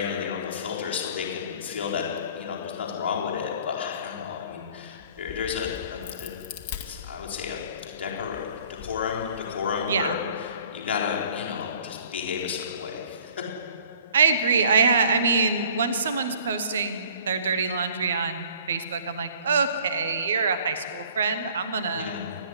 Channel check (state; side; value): inverted; both; correlation -0.54